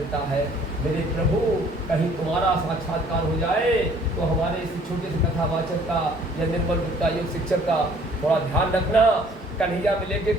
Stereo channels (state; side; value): normal; both; correlation 0.57